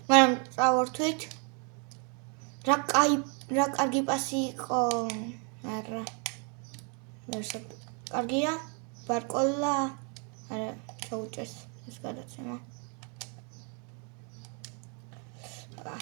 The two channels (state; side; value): quieter; left; 38.0 dB